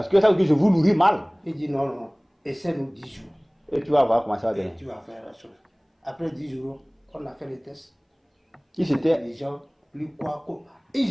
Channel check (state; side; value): identical; both; correlation 1.00